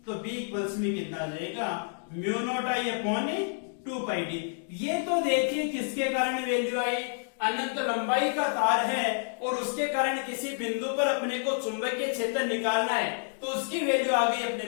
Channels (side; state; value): right; silent; digital silence